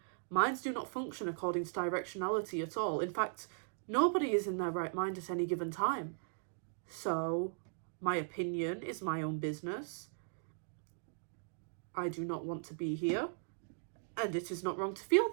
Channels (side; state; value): left; silent; digital silence